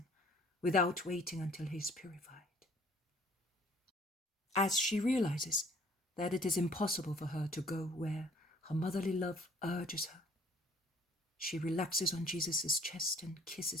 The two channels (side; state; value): both; normal; correlation 0.57